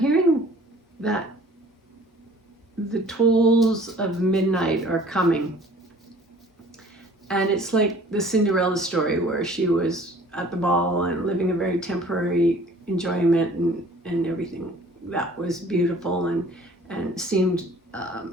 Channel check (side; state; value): both; normal; correlation 0.51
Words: that the tolls of midnight are coming. And it's like the Cinderella story where she was at the ball and living a very temporary enjoyment and everything that was beautiful and seemed